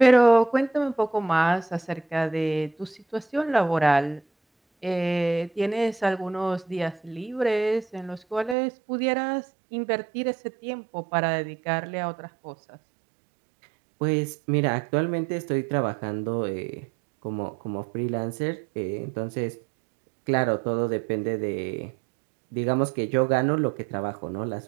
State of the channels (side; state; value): left; drops out; at 8.6 s